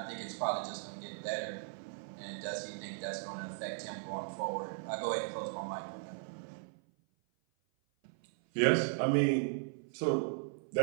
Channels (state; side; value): silent; left; 53 dB below the other